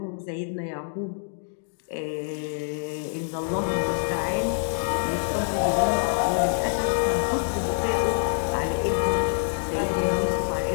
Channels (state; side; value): silent; right; digital silence